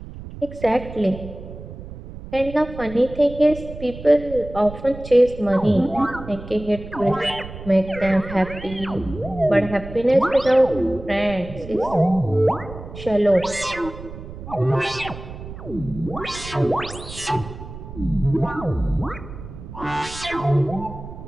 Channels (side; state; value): right; noise; rumble, 13 dB below the sound